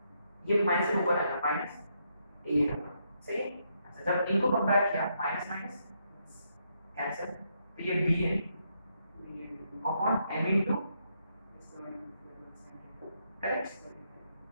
ये माइनस से ऊपर आएगा माइनस ए सही है। अच्छा, जब इनको कंपेयर किया माइनस माइनस कैंसिल, तो ये बी है अपॉन एम इनटू करेक्ट।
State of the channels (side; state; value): both; inverted; correlation -0.78